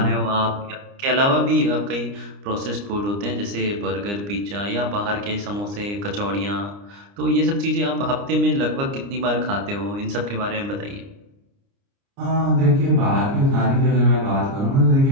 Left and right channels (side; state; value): left; late; 29 ms